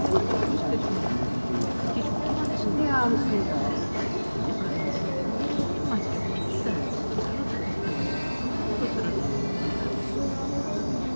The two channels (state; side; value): inverted; both; correlation -1.00